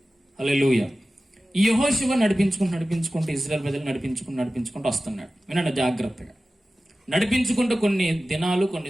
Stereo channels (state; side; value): normal; both; correlation 0.95